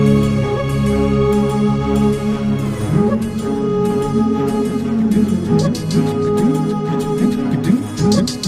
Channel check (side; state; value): both; identical; correlation 1.00